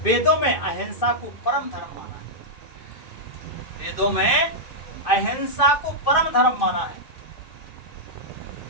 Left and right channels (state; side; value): late; right; 2.6 ms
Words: वेदों में अहिंसा को परम धर्म माना है। वेदों में अहिंसा को परम धर्म माना है।